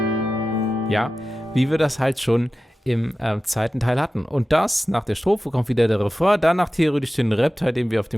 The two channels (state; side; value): normal; both; correlation 0.94